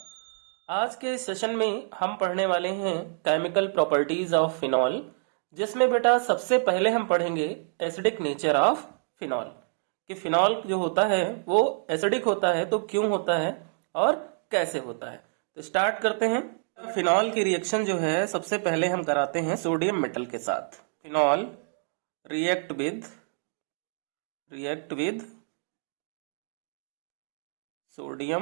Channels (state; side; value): silent; left; digital silence